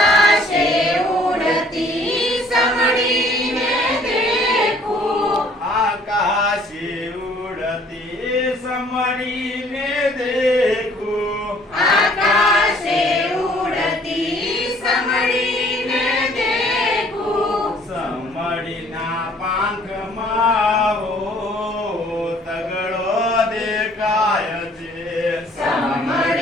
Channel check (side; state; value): both; normal; correlation 0.58